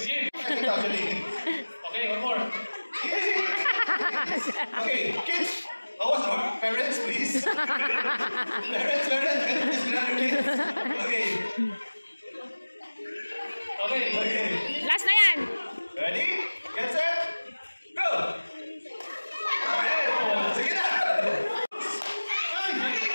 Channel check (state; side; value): inverted; both; correlation -1.00